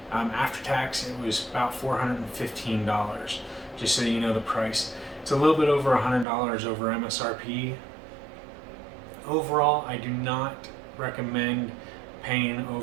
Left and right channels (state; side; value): drops out; left; at 6.2 s